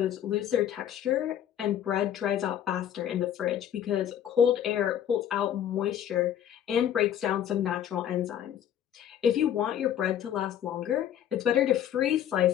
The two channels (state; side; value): quieter; right; 10.2 dB